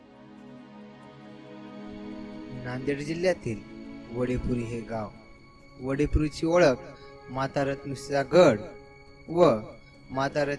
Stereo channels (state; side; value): identical; both; correlation 1.00